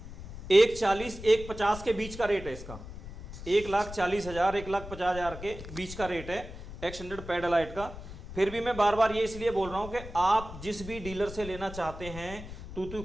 140 150 के बीच का रेट है इसका। 1,40,000 1,50,000 के बीच का रेट है एक्सटेंडेड पैड एलाइट का। फिर भी मैं बार बार ये इसलिए बोल रहा हूँ कि आप जिस भी डीलर से लेना चाहते हैं, तू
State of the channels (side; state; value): left; noise; rumble, 12 dB below the sound